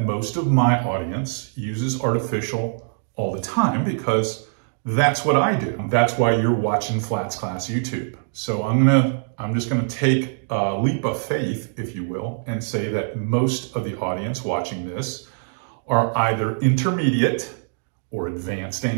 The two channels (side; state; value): left; silent; digital silence